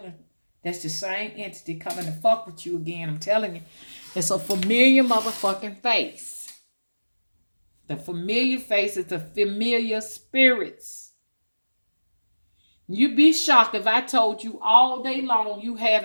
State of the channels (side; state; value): both; inverted; correlation -1.00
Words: That's the same entity coming to fuck with you again. I'm telling you. It's a familiar motherfucking face. The familiar face is the familiar spirits. You'd be shocked if I told you all day long you